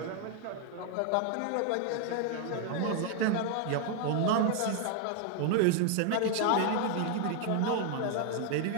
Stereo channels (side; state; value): both; different; correlation 0.00